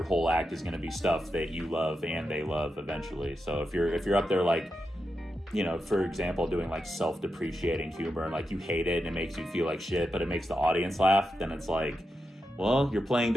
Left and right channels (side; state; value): both; normal; correlation 0.87